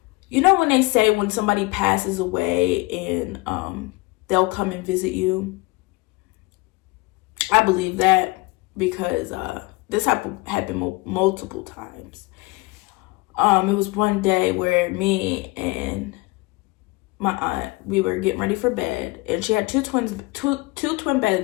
when they say when somebody passes away and they'll come and visit you, I believe that because this happened multiple times. It was one day where me and my aunt, we were getting ready for bed, and she had two twin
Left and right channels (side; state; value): right; quieter; 22.9 dB